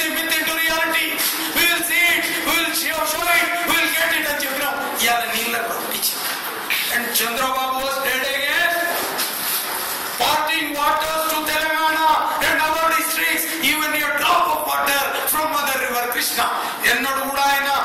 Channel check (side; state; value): both; identical; correlation 1.00